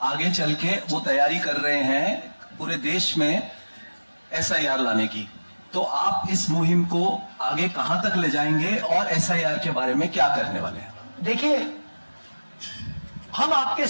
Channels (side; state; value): both; inverted; correlation -1.00